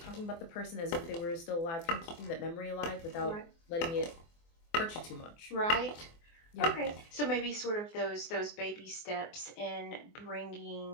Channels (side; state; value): right; late; 24 ms